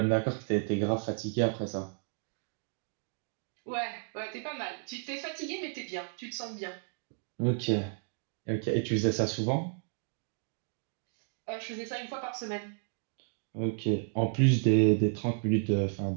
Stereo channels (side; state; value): left; silent; 56 dB below the other